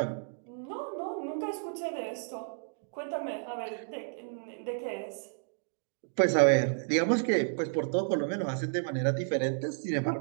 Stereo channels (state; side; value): silent; left; digital silence